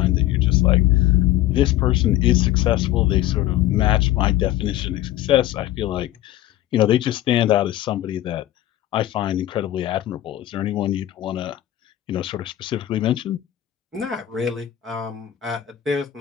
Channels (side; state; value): right; quieter; 13.9 dB